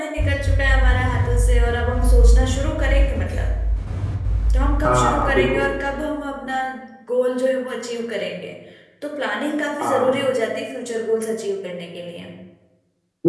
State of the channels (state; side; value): identical; both; correlation 1.00